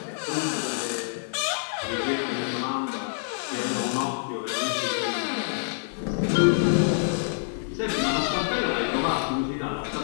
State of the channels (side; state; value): right; silent; digital silence